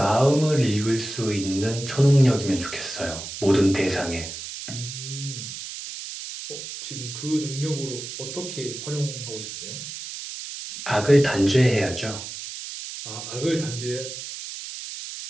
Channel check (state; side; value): noise; right; hiss, 9 dB below the sound